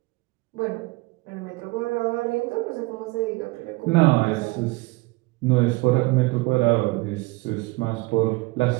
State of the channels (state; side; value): quieter; left; 23.6 dB